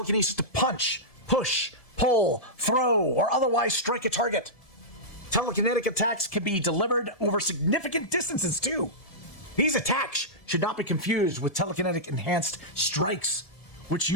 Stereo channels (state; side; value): late; right; 1.7 ms